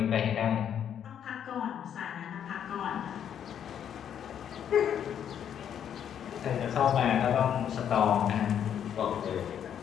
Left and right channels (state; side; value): quieter; right; 9.1 dB